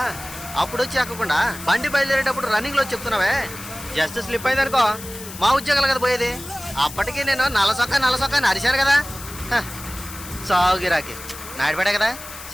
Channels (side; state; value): left; noise; hiss, 13 dB below the sound